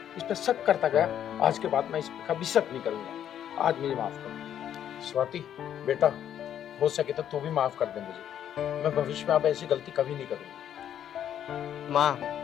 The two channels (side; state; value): right; quieter; 10.0 dB